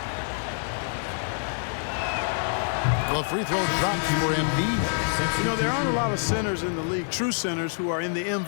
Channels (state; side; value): silent; right; digital silence